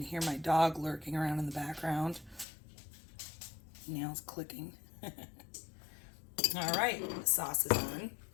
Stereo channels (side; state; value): right; drops out; at 2.5 s